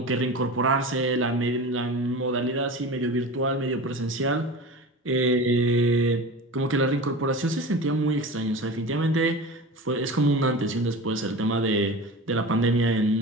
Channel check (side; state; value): both; normal; correlation 0.32